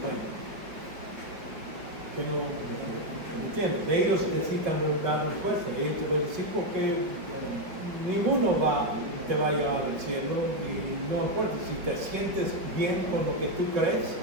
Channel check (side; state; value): left; late; 5.1 ms